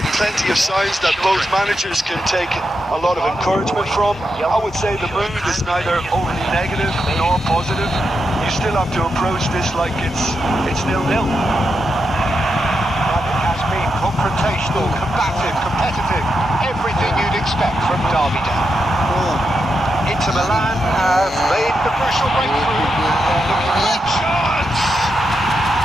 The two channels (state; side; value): normal; both; correlation 0.85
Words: Plenty of signs that both managers can take a lot of encouragement from. I would say the mood is neither overly negative nor positive. You still have to approach this like it's 0-0. But it has been confrontational, combative, competitive. Everything you'd expect from Derby Day. Inter Milan have made the crucial breakthrough. Looking for a chance.